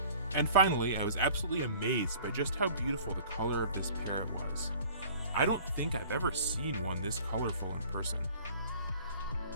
And finally, I was absolutely amazed by just how beautiful the color of this parrot was. I don't think I've ever seen one this colorful in person.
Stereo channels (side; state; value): both; inverted; correlation -0.48